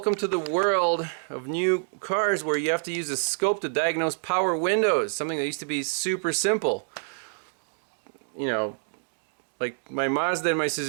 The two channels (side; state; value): left; silent; digital silence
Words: to the world of new cars where you have to use a scope to diagnose power windows, something that used to be super simple. You know, like my Mazda and my